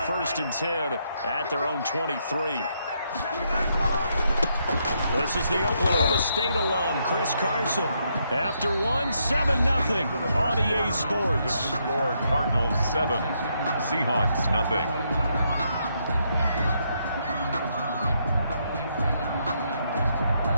1st and 10 at their own 23. This is the Oklahoma State alum, Chris Carson. After one, 7-0 on EA Sports. Score Cardinals 7, Seahawks nothing.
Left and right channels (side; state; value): both; inverted; correlation -0.77